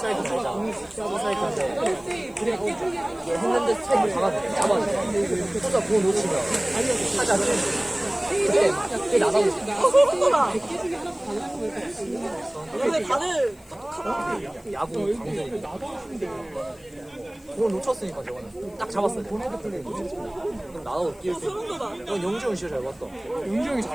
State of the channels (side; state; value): left; noise; hiss, 27 dB below the sound